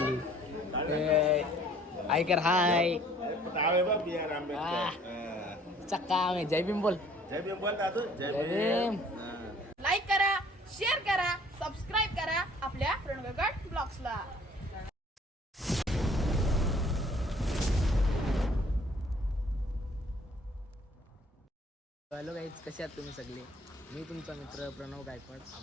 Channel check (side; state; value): both; normal; correlation 0.56